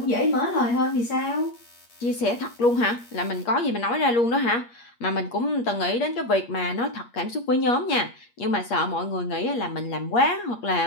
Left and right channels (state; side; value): late; right; 8.5 ms